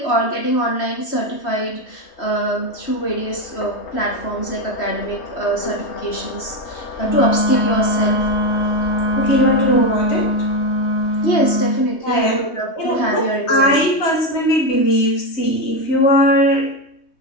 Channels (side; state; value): right; late; 3.2 ms